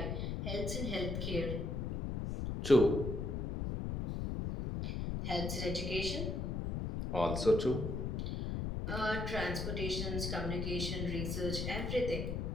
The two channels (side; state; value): left; noise; rumble, 2 dB below the sound